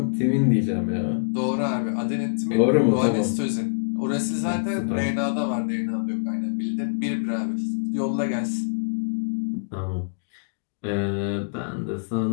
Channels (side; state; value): right; silent; digital silence